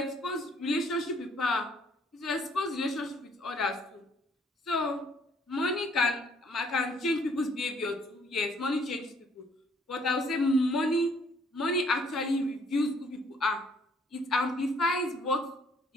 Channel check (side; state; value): both; normal; correlation 0.63